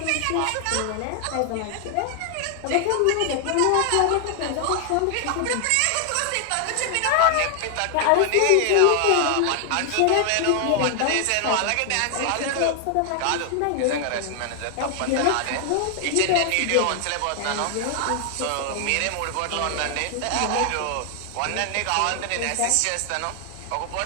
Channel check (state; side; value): different; both; correlation 0.00